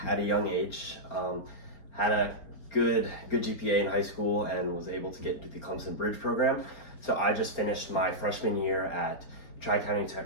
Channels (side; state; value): right; late; 4.4 ms